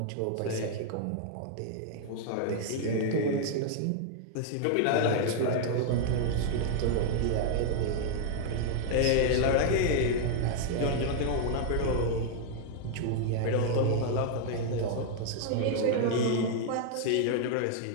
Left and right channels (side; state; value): both; different; correlation 0.00